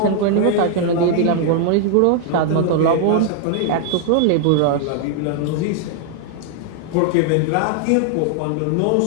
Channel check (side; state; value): both; different; correlation 0.00